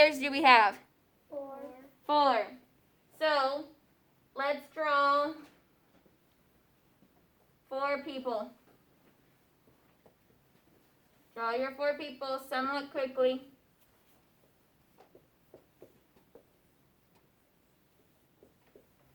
do we have? 4. So, let's draw 4 people. Draw your 4 people somewhat quickly.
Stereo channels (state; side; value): identical; both; correlation 1.00